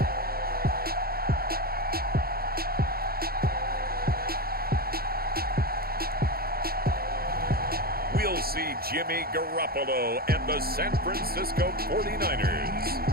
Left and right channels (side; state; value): left; late; 0.44 ms